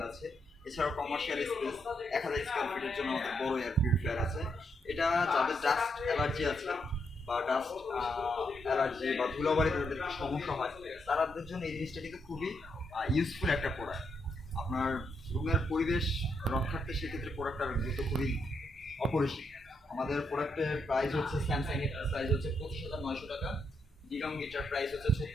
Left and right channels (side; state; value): both; normal; correlation 0.79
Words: আছে। এছাড়াও কমার্শিয়াল স্পেস 1000 স্কোয়ার ফিটের জন্য আমাদের বড় এয়ার পিউরিফায়ার আছে। এটা যাদের ডাস্ট অ্যালার্জি আছে বা ডাস্ট অ্যালার্জি বা ধুলাবাড়িতে তাদের সমস্যা হয়, তাদের জন্য এই জিনিসটা কিন্তু খুবই ইউজফুল একটা প্রোডাক্ট। আপনার রুমের পরিবেশ রক্ষার্থে সেক্ষেত্রে প্রোডাক্টটার গুরুত্ব খুবই অপরিসীম। আমাদের প্রোডাক্টের প্রাইস হচ্ছে, স্যামসাং এর প্রাইস হচ্ছে 25,900 টাকা, ডিগাম গিটার প্রাইস হচ্ছে